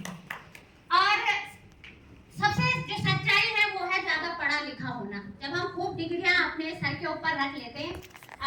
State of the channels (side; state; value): both; identical; correlation 1.00